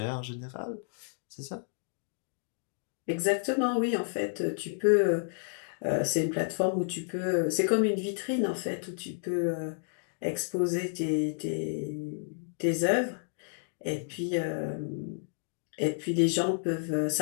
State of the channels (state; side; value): silent; right; digital silence